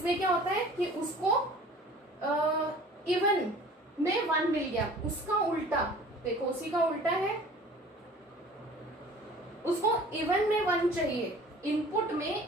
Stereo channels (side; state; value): both; normal; correlation 0.46